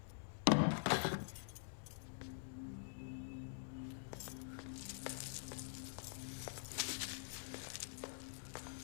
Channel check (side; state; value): right; silent; digital silence